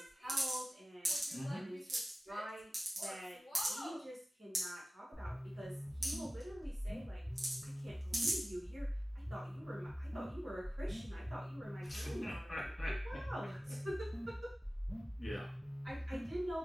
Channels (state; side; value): normal; both; correlation 0.97